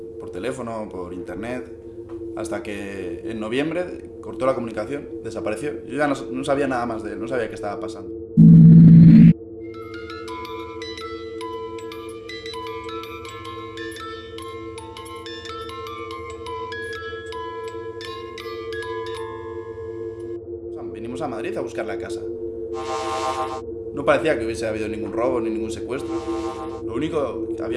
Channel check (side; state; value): both; identical; correlation 1.00